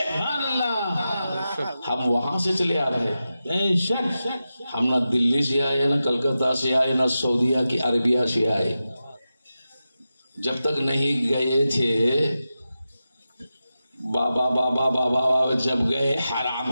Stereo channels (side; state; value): both; inverted; correlation -0.92